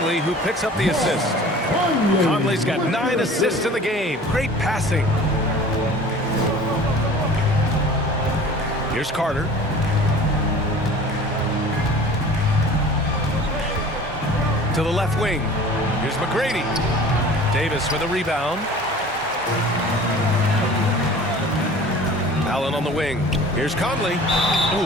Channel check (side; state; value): both; normal; correlation 0.44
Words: who picks up the assist. Conley's got 9 assists in the game. Great passing. Here's Carter. To the left wing. Here's McGrady. Davis with a rebound. Allen on the wing. Here's Conley. Ooh,